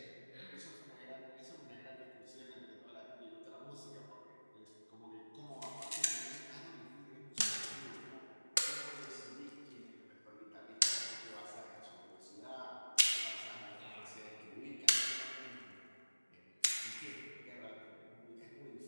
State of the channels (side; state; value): both; inverted; correlation -1.00